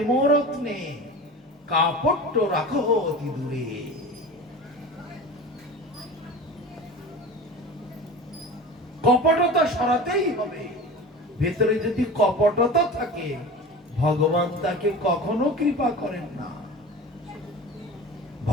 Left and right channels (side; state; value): both; normal; correlation 0.34